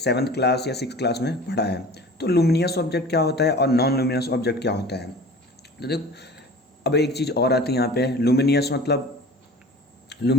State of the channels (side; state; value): both; normal; correlation 0.41